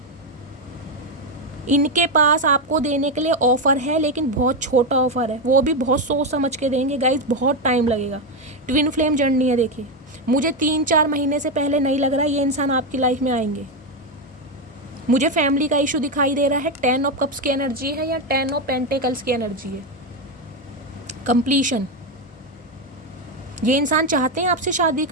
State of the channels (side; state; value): both; normal; correlation 0.08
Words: इनके पास आपको देने के लिए ऑफ़र है, लेकिन बहुत छोटा ऑफ़र है, वो भी बहुत सोच समझ के देंगे गाइस, बहुत टाइम लगेगा। ट्विन फ्लेम जर्नी है। देखिए मुझे 3-4 महीने से पहले नहीं लग रहा ये इंसान आपकी लाइफ में आएंगे। मुझे फैमिली का इशू दिखाई दे रहा है। 10 ऑफ कप्स की एनर्जी है या 10 ऑफ पेंटिकल्स की एनर्जी है। कंप्लीशन, ये इंसान चाहते हैं आपसे शादी